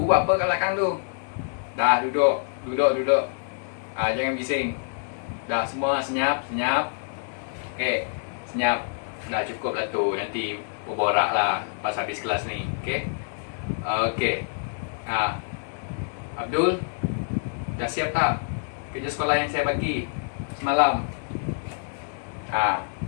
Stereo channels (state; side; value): silent; right; digital silence